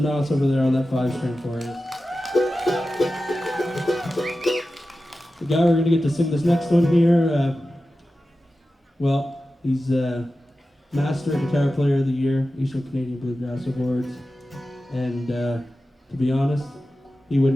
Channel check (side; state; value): both; normal; correlation 0.94